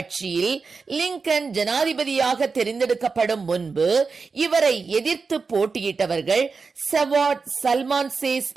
லிங்கன் ஜனாதிபதியாக தெரிந்தெடுக்கப்படும் முன்பு இவரை எதிர்த்து போட்டியிட்டவர்கள் சவாட் சல்மான்சேஸ்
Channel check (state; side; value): quieter; left; 4.7 dB